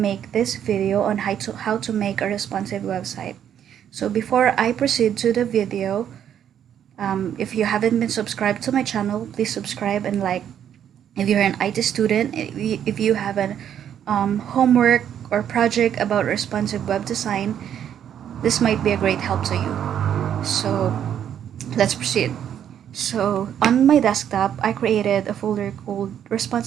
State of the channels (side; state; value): left; quieter; 9.5 dB